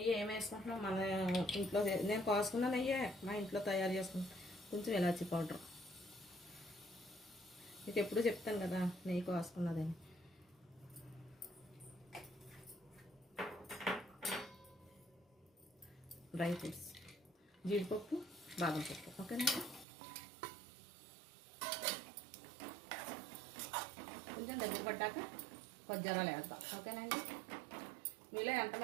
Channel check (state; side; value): drops out; left; at 19.9 s